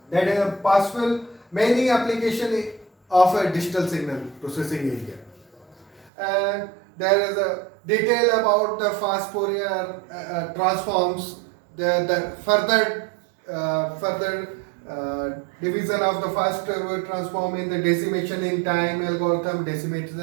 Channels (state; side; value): drops out; left; at 6.1 s